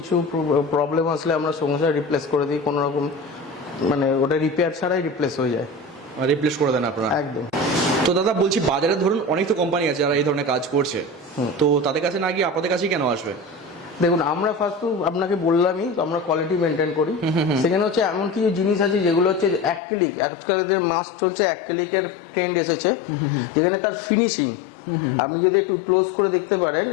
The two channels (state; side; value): drops out; right; at 19.8 s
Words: প্রবলেম আসলে আমরা সঙ্গে সঙ্গে রিপ্লেস করে দিই। কোনো রকম মানে ওটা রিপেয়ার ছাড়াই রিপ্লেস হয়ে যায়। রিপ্লেস করে দেন আপনারা? একদম। তো দাদা বলছি, বাজারে ধরুন অনেক তো কোম্পানি আছে যারা এই ধরনের কাজ করছে, তো তাদের কাছে না গিয়ে আপনাদের কাছেই কেন আসবে? দেখুন, আমরা ফার্স্ট আপনাকে বললামই আমরা কোয়ালিটি মেনটেন করি। সেখানে হচ্ছে এমন কিছু জিনিস আছে যেগুলো হচ্ছে অ্যাক্রিলিক, আজকালের মাস চলছে অ্যাক্রিলিকের ট্রেন্ড এসেছে, যেখানে তার ফিনিশিং আপনি যদি একটু ক্লোজ করে দেখতে পারেন